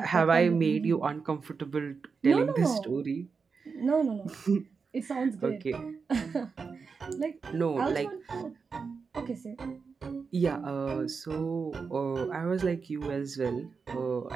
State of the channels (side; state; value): left; quieter; 5.2 dB